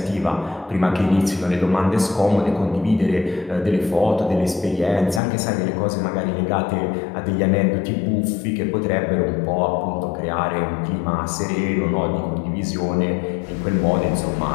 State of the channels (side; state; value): right; drops out; at 5.2 s